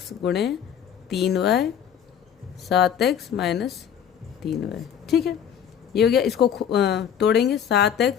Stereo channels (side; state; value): right; quieter; 8.7 dB